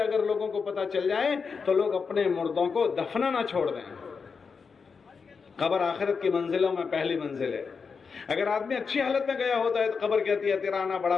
لوگوں کو پتہ چل جائے تو لوگ اپنے مردوں کو دفنانا چھوڑ دیں. قبر آخرت کی منزلوں میں پہلی منزل ہے. اگر آدمی اچھی حالت میں گیا ہوتا ہے تو قبر کہتی ہے تیرا آنا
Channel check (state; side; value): quieter; right; 5.4 dB